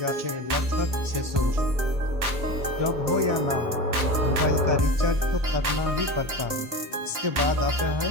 जाते हैं लगभग 600 रुपये। जॉब हो या ना हो, मोबाइल का रिचार्ज तो करना ही पड़ता है। इसके बाद आता है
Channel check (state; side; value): late; left; 1.3 ms